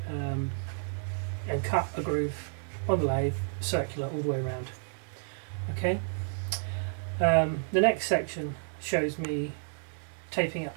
cut a groove on the lathe, circular all the way around. Okay, the next section shows me taping up,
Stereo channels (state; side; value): silent; left; 57 dB below the other